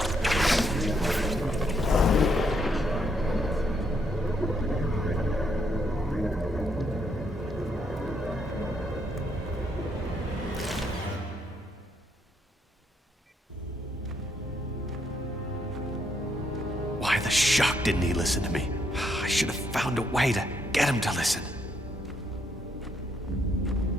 Why the shock didn't he listen to me? I should have found a way to get him to listen.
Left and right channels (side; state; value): both; normal; correlation 0.74